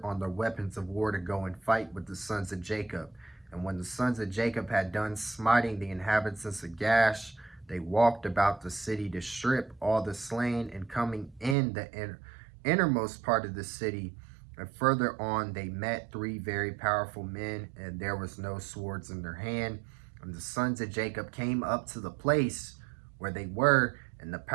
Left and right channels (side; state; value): left; drops out; at 11.6 s